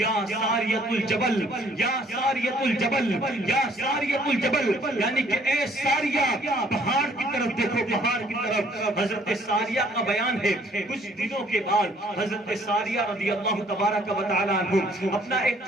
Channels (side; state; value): both; normal; correlation 0.61